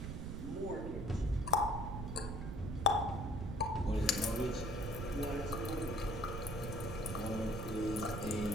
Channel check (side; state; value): right; noise; rumble, 5 dB below the sound